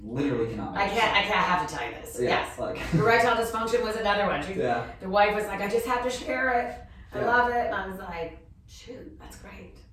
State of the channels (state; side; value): identical; both; correlation 1.00